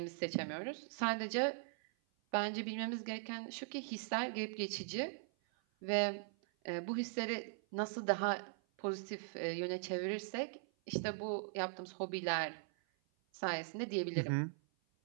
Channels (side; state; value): left; silent; 51 dB below the other